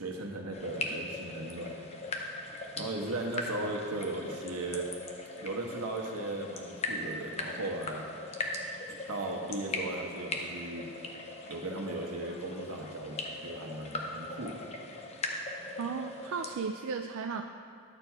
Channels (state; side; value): normal; both; correlation 0.02